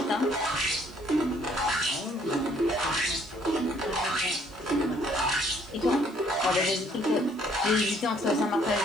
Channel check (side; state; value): right; noise; hiss, 28 dB below the sound